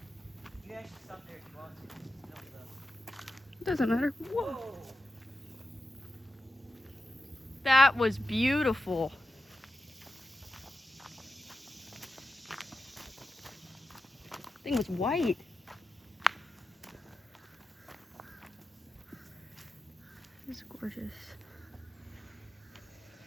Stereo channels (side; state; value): both; normal; correlation 0.91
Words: You can actually stop there if you want to. Doesn't matter. Whoa! That was beautiful. Thing was white. It's gorgeous.